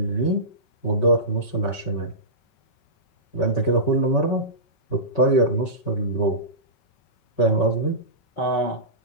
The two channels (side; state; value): right; late; 5.3 ms